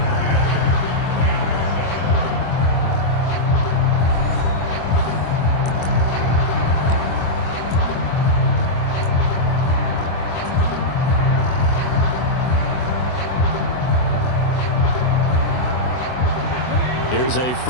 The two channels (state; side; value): late; right; 24 ms